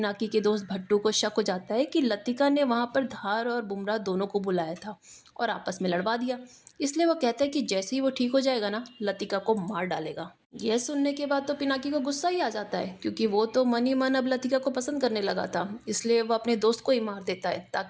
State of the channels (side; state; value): both; identical; correlation 1.00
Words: के दोस्त भट्टू को शक हो जाता है कि लतिका ने वहाँ पर धार और बुमराह दोनों को बुलाया था और आपस में लड़वा दिया। इसलिए वो कहता है कि जैसे ही वो ठीक हो जाएगा ना, लतिका को मार डालेगा। यह सुनने के बाद तो पिनाकी को गुस्सा ही आ जाता है, क्योंकि वो तो मन ही मन अब लतिका को पसंद करने लगा था। इसलिए वो अपने दोस्त को ही मार देता है